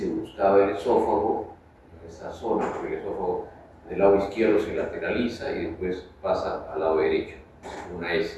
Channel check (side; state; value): both; identical; correlation 1.00